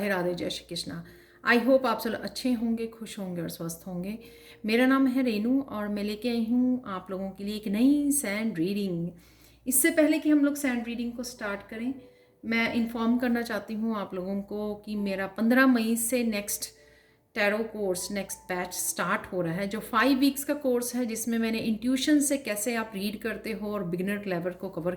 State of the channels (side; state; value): both; identical; correlation 1.00